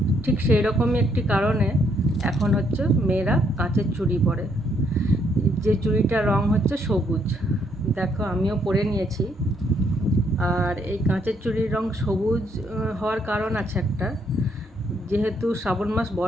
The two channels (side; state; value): both; normal; correlation 0.71